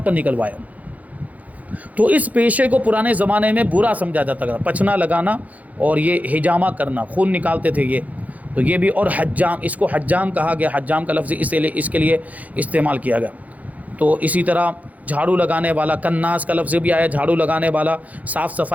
پر نکلوایا۔ تو اس پیشے کو پرانے زمانے میں برا سمجھا جاتا تھا، پچھنا لگانا اور یہ حجامہ کرنا، خون نکالتے تھے یہ، تو یہ بھی، اور حجام، اس کو حجام کہا گیا، حجام کا لفظ اس کے لیے استعمال کیا گیا۔ تو اسی طرح جھاڑو لگانے والا، کناس کا لفظ بھی آیا، جھاڑو لگانے والا، صاف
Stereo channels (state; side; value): late; left; 0.075 ms